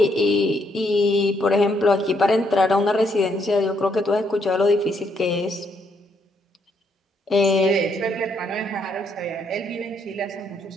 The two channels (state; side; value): normal; both; correlation 0.74